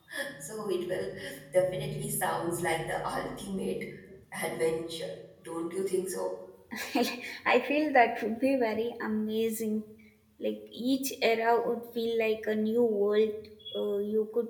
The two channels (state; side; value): identical; both; correlation 1.00